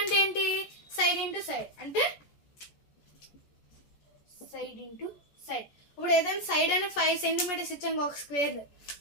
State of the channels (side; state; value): right; late; 14 ms